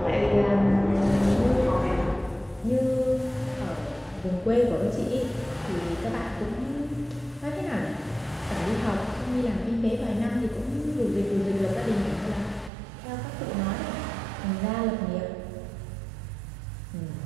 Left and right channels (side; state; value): left; drops out; at 12.7 s